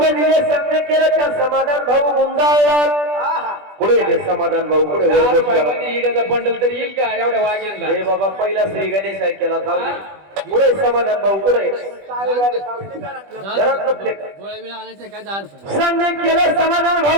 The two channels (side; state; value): left; late; 20 ms